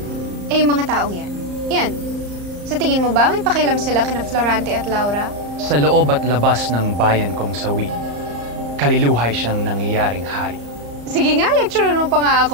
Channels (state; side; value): late; left; 34 ms